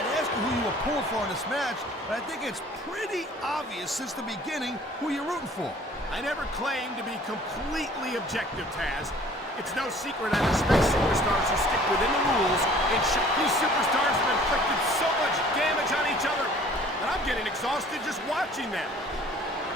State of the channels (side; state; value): both; normal; correlation 0.52